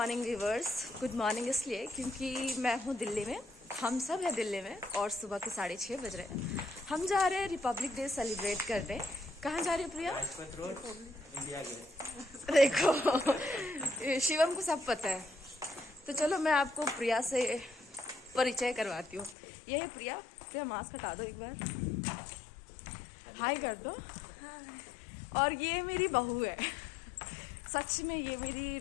viewers. Good morning इसलिए क्योंकि मैं हूँ दिल्ली में, हम सब हैं दिल्ली में और सुबह के 6:30 बज रहे हैं। हम जा रहे हैं रिपब्लिक डे सेलिब्रेट करने। कहाँ जा रहे हैं प्रिया? India gate. देखो शिवम को सब पता है, तो चलो मैं आपको प्रिया से परिचय करवाती हूँ। ये है प्रिया। प्रिया मास्क हटा दो एक बार, हाय कर दो। और ये मेरी बहू है, सच में ये मेरी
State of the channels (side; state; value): right; drops out; at 19.4 s